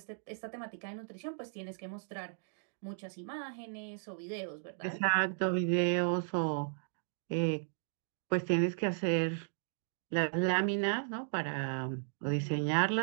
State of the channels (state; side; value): silent; left; digital silence